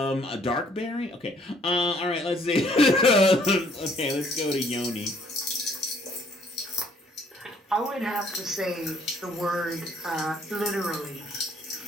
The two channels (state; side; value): normal; both; correlation 0.63